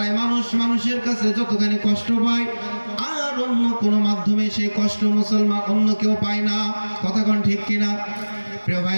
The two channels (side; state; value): both; inverted; correlation -1.00